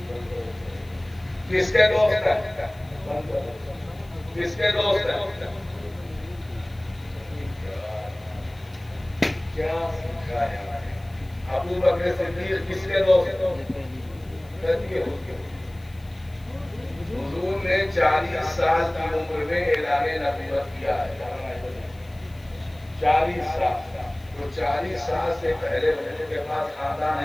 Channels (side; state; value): left; noise; hiss, 28 dB below the sound